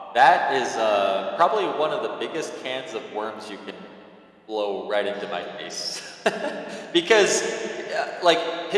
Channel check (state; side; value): identical; both; correlation 1.00